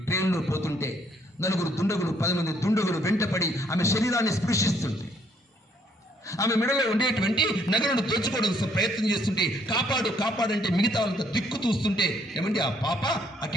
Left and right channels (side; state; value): both; normal; correlation 0.67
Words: ట్రైన్లో పోతుంటే నలుగురు దుండగులు, 10 మంది దుండగులు వెంటపడి ఆమె శరీరాన్ని స్పృశిస్తుంది. ఆమె మెడలో ఉండేటువంటి నగలను దోచుకోవడం ప్రయత్నం చేస్తుంటే కాపాడు కాపాడంటే మిగతా వాళ్ళంతా దిక్కు చూస్తుంటే ఏమంటే ఆ పాప